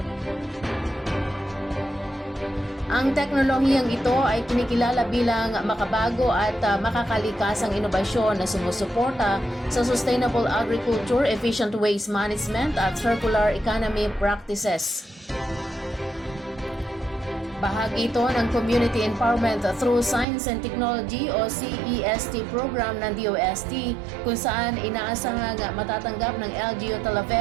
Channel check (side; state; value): left; drops out; at 20.2 s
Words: Ang teknolohiyang ito ay kinikilala bilang makabago at makakalikasang inobasyon na sumusuporta sa sustainable agriculture, efficient waste management at circular economy practices. Bahagi ito ng Community Empowerment Through Science and Technology o CEST program ng DOST kung saan inaasahang matatanggap ng LGU